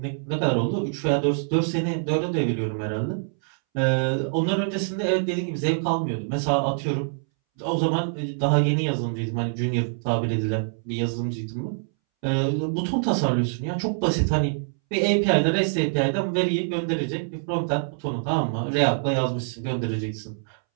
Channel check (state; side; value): silent; left; 62 dB below the other